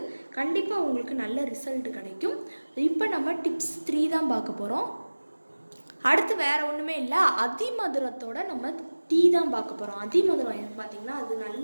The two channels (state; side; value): inverted; both; correlation -1.00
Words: கண்டிப்பாக உங்களுக்கு நல்ல ரிசல்ட் கிடைக்கும். இப்போ நம்ம டிப்ஸ் 3 தான் பார்க்க போகிறோம். அடுத்து வேறு ஒன்றுமே இல்லை, அதிமதுரத்தோட நம்ம டீ தான் பார்க்க போகிறோம். அதிமதுரம் எனக்கு பார்த்திங்கன்னா அது